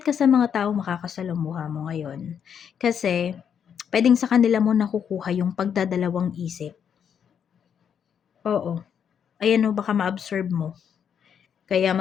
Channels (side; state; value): right; quieter; 8.0 dB